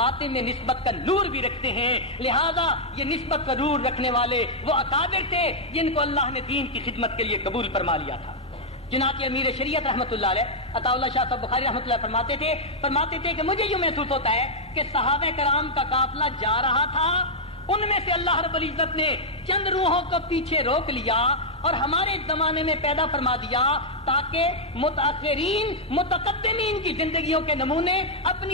میں نسبت کا نور بھی رکھتے ہیں. لہذا یہ نسبت کا نور رکھنے والے وہ اکابر تھے جن کو اللہ نے دین کی خدمت کے لیے قبول فرما لیا تھا. چنانچہ امیر شریعت رحمۃ اللہ علیہ عطاء اللہ شاہ صاحب بخاری رحمۃ اللہ فرماتے تھے کہ مجھے یوں محسوس ہوتا ہے کہ صحابہ کرام کا قافلہ جا رہا تھا, ان میں سے اللہ رب العزت نے چند روحوں کو پیچھے روک لیا اور ہمارے زمانے میں پیدا فرما دیا تاکہ متأخرین متقدمین کی زندگیوں کے نمونے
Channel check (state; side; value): normal; both; correlation -0.05